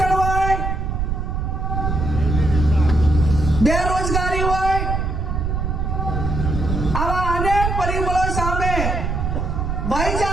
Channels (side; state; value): right; noise; rumble, 1 dB below the sound